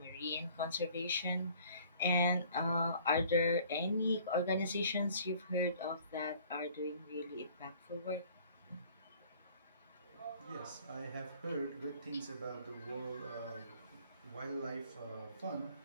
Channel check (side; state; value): both; inverted; correlation -0.54